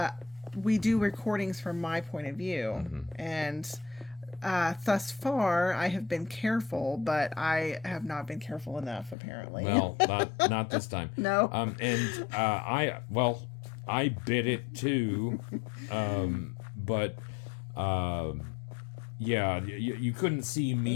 We do recordings from my point of view, and thus far I have been careful, but I have not been careful enough, apparently. Well, not this time. No. I bit it too, but you couldn't see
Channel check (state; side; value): drops out; right; at 9.2 s